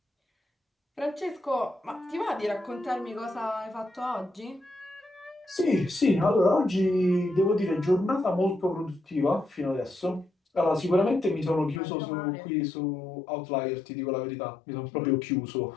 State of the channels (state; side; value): drops out; right; at 11.8 s